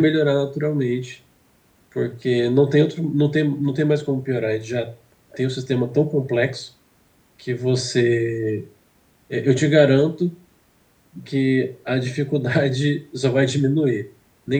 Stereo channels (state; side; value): identical; both; correlation 1.00